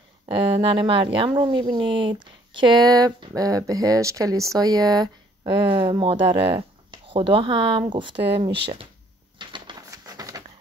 ننه مریم رو میبینید که بهش کلیسای مادر خدا هم گفته میشه.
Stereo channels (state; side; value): normal; both; correlation 0.62